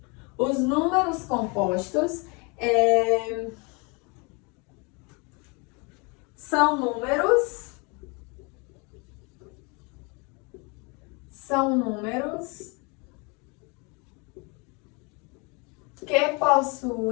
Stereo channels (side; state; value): right; quieter; 30.7 dB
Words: Os números compostos são números que